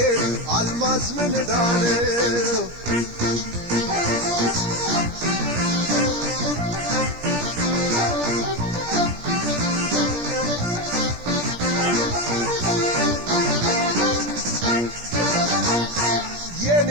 አልማዝ ምን ዳነው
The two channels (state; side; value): late; left; 17 ms